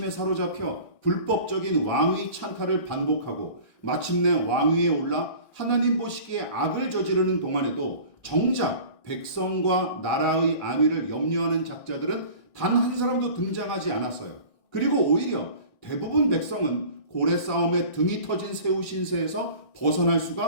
사로잡혀 불법적인 왕위 찬탈을 반복하고 마침내 왕위에 올라 하나님 보시기에 악을 저지르는 동안에도 정작 백성과 나라의 안위를 염려하는 작자들은 단 한 사람도 등장하지 않았어요. 그리고 오히려 대부분 백성은 고래 싸움에 등이 터진 새우 신세에서 벗어날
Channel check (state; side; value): late; right; 1.6 ms